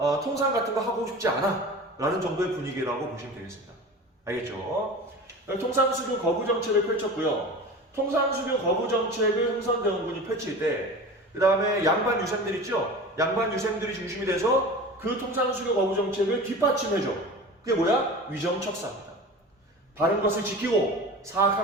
통상 같은 거 하고 싶지 않아. 라는 정도의 분위기라고 보시면 되겠습니다. 알겠죠? 통상수교 거부 정책을 펼쳤고요. 통상수교 거부 정책을 흥선대원군이 펼칠 때, 그 다음에 양반 유생들 있죠? 양반 유생들이 중심이 돼서 그 통상수교 거부 정책을 뒷받침해줘. 그게 뭐야? 위정척사입니다. 바른 것을 지키고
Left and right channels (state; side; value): normal; both; correlation 0.34